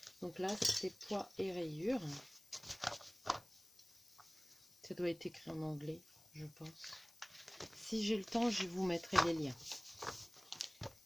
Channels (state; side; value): noise; left; hiss, 26 dB below the sound